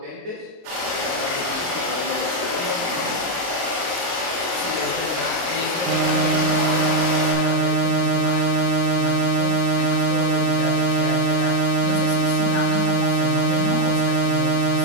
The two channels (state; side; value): late; left; 23 ms